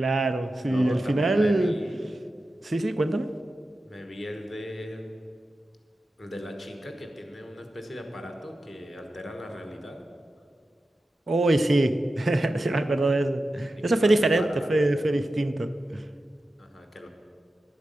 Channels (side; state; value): both; normal; correlation 0.92